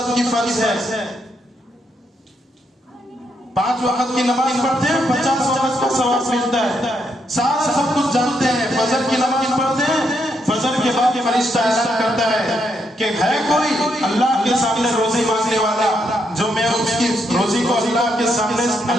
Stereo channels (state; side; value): normal; both; correlation 0.78